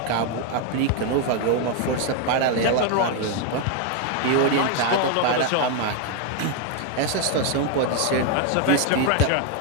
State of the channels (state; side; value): different; both; correlation 0.01